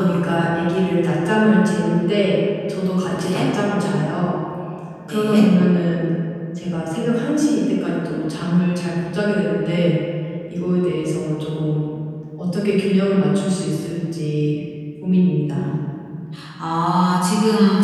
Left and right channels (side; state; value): both; identical; correlation 1.00